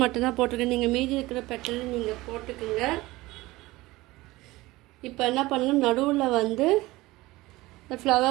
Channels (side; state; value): left; quieter; 19.6 dB